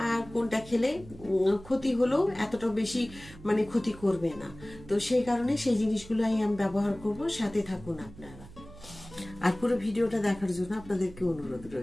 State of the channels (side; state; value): right; noise; hum, 18 dB below the sound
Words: আর কোনটা খেলে ক্ষতি হলেও এতটা বেশি ক্ষতি করবে না। তো সেই কারণে সেই জিনিসগুলোই আমি ব্যবহার করব। সাথে থাকুন আপনারা, আর পুরো ভিডিওটা দেখার জন্য আপনাদেরকে অনুরোধ